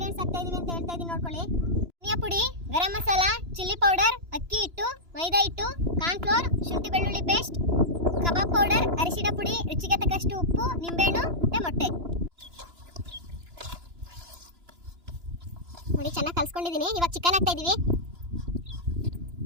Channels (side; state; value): left; late; 2.9 ms